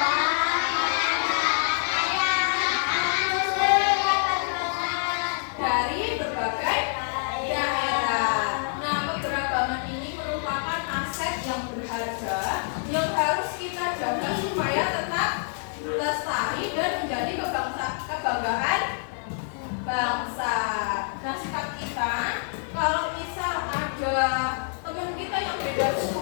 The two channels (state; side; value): silent; right; digital silence